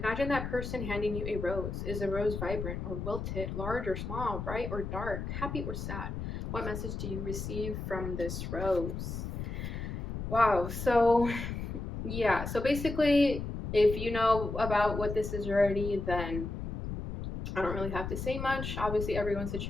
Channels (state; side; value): noise; left; rumble, 5 dB below the sound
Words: that person handing you a rose. Is the rose vibrant or wilted, large or small, bright or dark, happy or sad? What message do you receive from this rose? Wow, so yeah, so basically, if you know about what this is already, then I don't really have to say much. Obviously, everyone's